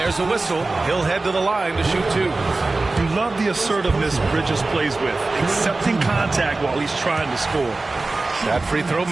a whistle. He'll head to the line to shoot 2. You love the assertiveness Bridges plays with, accepting contact while he's trying to score. That free throw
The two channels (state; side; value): quieter; left; 3.3 dB